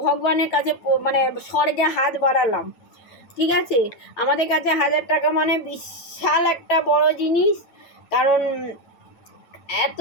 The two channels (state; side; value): late; right; 9.0 ms